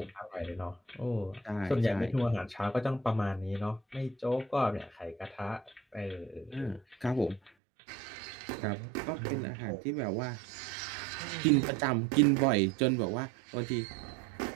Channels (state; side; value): drops out; left; at 7.5 s